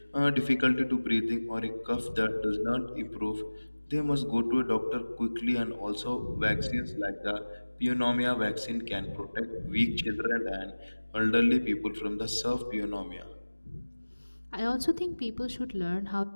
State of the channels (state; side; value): inverted; both; correlation -1.00